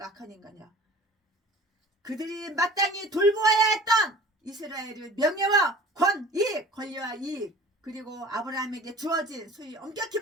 악한 인간이야. 그들이 마땅히 돌보아야 했던 이스라엘의 명예와 권익, 권리와 이익, 그리고 아브라함에게 주어진 소위 엄격히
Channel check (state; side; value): normal; both; correlation 0.45